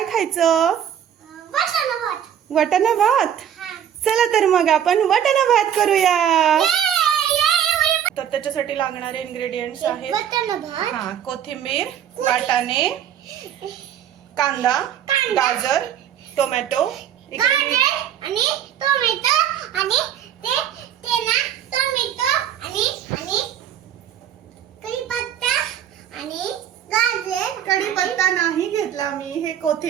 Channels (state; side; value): quieter; left; 9.7 dB